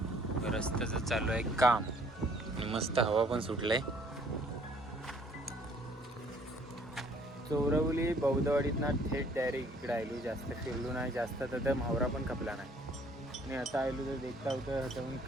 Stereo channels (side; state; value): both; normal; correlation 0.60